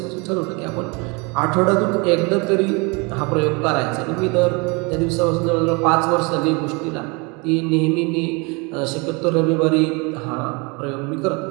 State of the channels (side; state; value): left; quieter; 29.2 dB